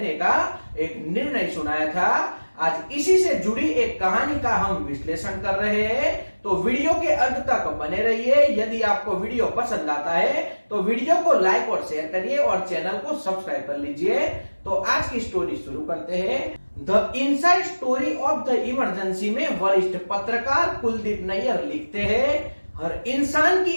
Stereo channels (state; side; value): inverted; both; correlation -1.00